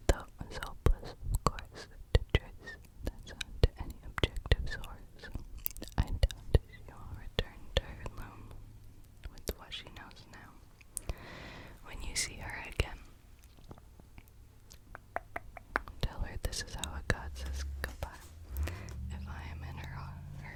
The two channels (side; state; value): both; identical; correlation 1.00